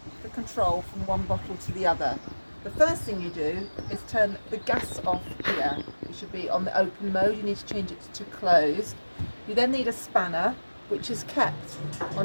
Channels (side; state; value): both; inverted; correlation -1.00